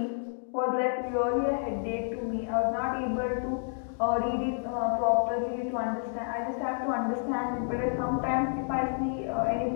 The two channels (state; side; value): silent; right; digital silence